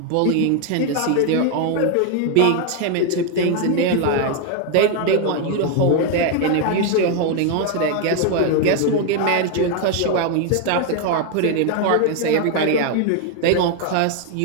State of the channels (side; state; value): both; different; correlation 0.01